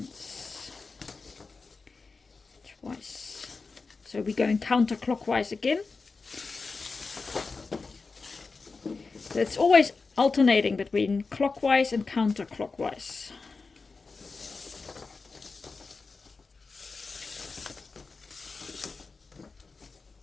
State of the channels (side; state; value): right; quieter; 4.3 dB